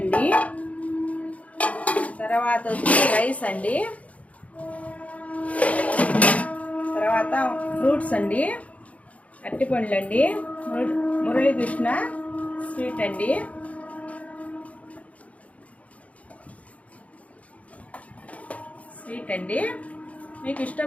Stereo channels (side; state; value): right; late; 0.067 ms